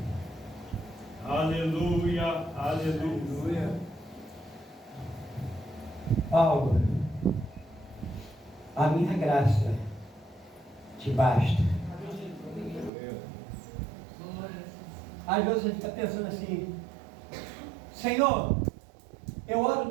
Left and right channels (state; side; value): drops out; left; at 12.9 s